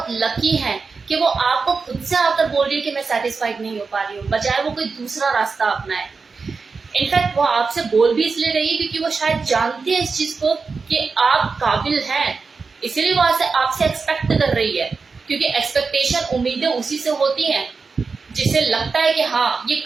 लकी हैं कि वो आपको खुद से आकर बोल रही है कि मैं सेटिस्फाइड नहीं हो पा रही हूँ, बजाय वो कोई दूसरा रास्ता अपनाए। इनफैक्ट वो आपसे बोल भी इसलिए रही है क्योंकि वो शायद जानती है इस चीज को कि आप काबिल हैं, इसीलिए वो आपसे एक्सपेक्ट कर रही है। क्योंकि एक्सपेक्टेशन, उम्मीदें उसी से होती हैं जिसे लगता है कि हाँ ये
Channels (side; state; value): left; quieter; 4.7 dB